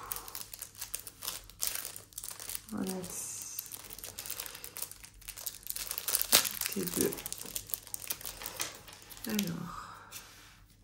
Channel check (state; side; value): identical; both; correlation 1.00